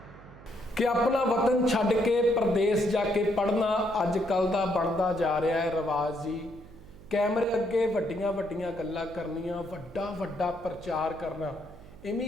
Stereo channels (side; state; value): right; noise; hum, 20 dB below the sound